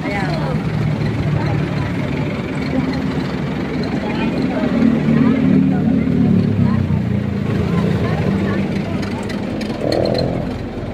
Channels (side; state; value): both; identical; correlation 1.00